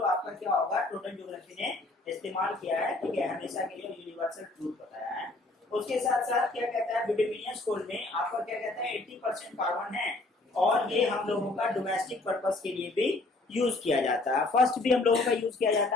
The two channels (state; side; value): quieter; right; 3.0 dB